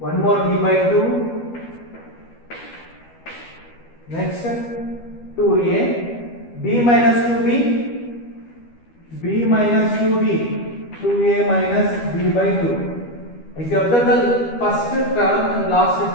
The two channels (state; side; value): late; right; 12 ms